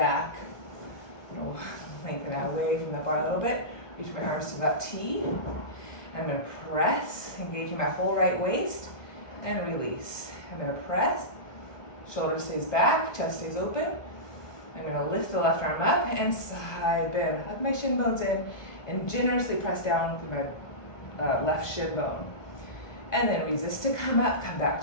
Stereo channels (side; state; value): right; late; 1.4 ms